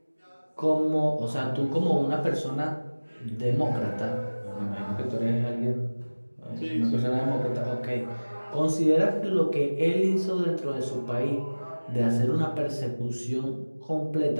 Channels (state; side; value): inverted; both; correlation -1.00